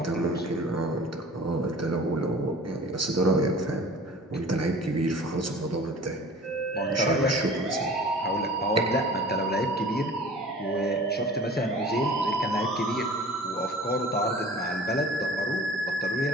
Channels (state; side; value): normal; both; correlation 0.44